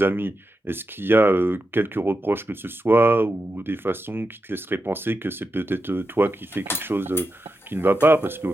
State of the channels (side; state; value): both; normal; correlation 0.88